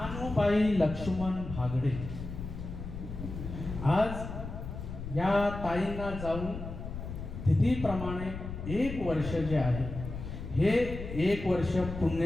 लक्ष्मण भागडे. आज या ताईंना जाऊन तिथीप्रमाणे 1 वर्ष जे आहे हे 1 वर्ष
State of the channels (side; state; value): left; noise; rumble, 8 dB below the sound